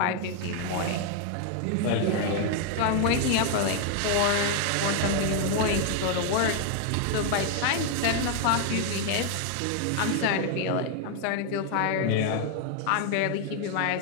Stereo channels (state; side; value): different; both; correlation 0.00